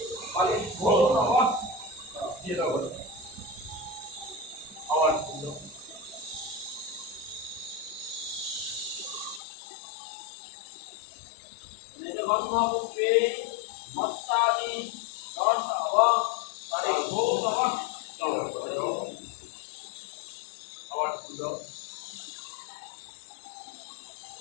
ফলেভ্যো নমঃ। দিয়ে দাও আবার ফুল দাও। গন্ধপুষ্পে মত্তাদি দশ ফলেভ্যো নমঃ। আবার ফুল দাও।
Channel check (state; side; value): drops out; right; at 9.4 s